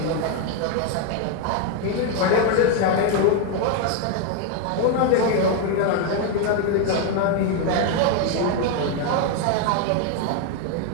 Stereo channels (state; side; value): different; both; correlation 0.01